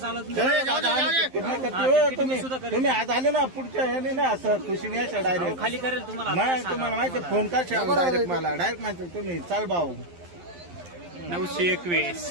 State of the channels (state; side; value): late; left; 11 ms